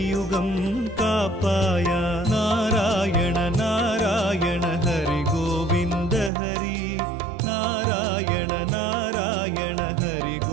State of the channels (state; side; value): drops out; left; at 6.3 s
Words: कापाया नारायण नारायण हरि गोविंद हरि नारायण नारायण हरि